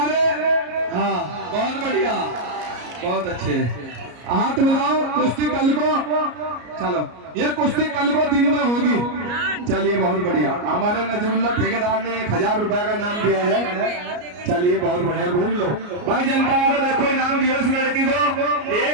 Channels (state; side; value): late; left; 33 ms